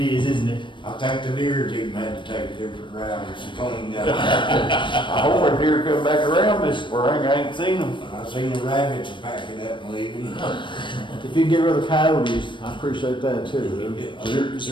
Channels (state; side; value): late; right; 0.23 ms